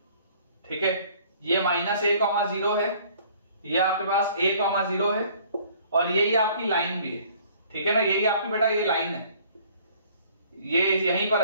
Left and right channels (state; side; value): inverted; both; correlation -0.56